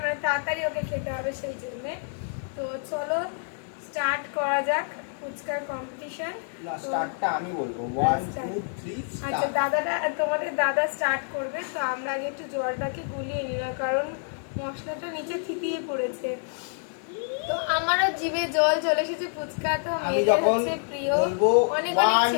মানে তাড়াতাড়ি ওকে খেতে হবে সেই জন্যে। তো চলো স্টার্ট করা যাক ফুচকার কম্পিটিশন। না, স্টার্টটা আমি বলবো 1 2 3 আচ্ছা, স্টার্ট। দাদাটা তোমাদের দাদা স্টার্ট করবে। তো আমরা আগে একটু জলটাকে গুলিয়ে নিলাম, কারণ মশলাটা নিচে থিতিয়ে পড়েছে। তো আমারও জিভে জল চলে এসেছে। ফুচকা তো আমি মেয়েদের যখন হচ্ছে প্রিয়, বলবো অনেক 1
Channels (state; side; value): silent; right; 60 dB below the other